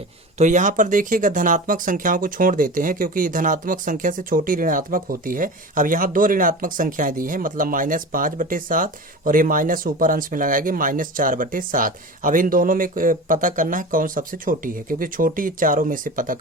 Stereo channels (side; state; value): both; normal; correlation 0.32